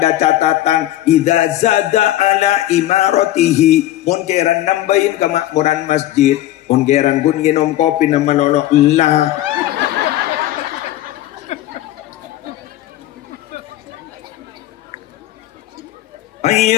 catatan idza zada ala imaratihi munkiran nambahin kemakmuran masjid ongeran pun nginom kopi nama lolok lah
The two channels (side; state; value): right; quieter; 14.2 dB